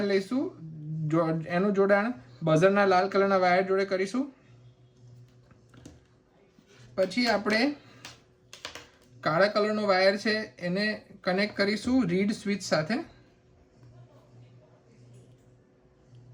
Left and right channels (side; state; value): both; identical; correlation 1.00